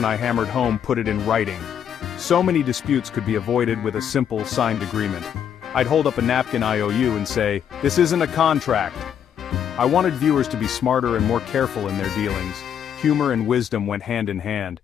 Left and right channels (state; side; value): quieter; right; 8.9 dB